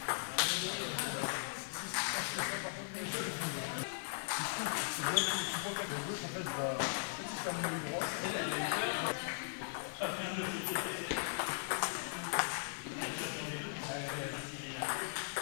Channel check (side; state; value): right; silent; digital silence